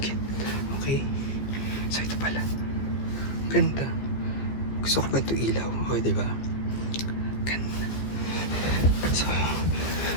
Okay. So, ito pala. Ganda. Gusto ko ba ito ilaw? O, di ba? Ganda. So,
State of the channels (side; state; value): right; late; 15 ms